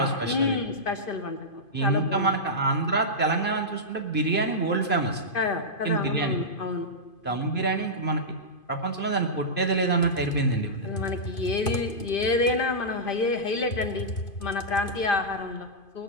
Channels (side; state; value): right; late; 2.5 ms